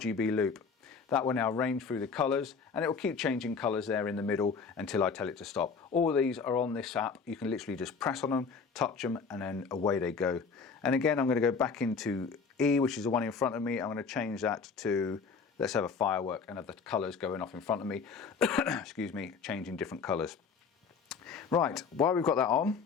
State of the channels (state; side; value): quieter; right; 5.4 dB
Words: Loop. That will now range through the colors, and it will keep changing colors there in the middle until I tell it to stop. All these are on this app. You can literally just press on them, touch them, and then away they go. And again, I'm going to go back into E, which is the one in front of me. I'm going to change that to, let's have a firework and have the colors going off in front of me. Excuse me, changing different colors. Right, while we've got that on,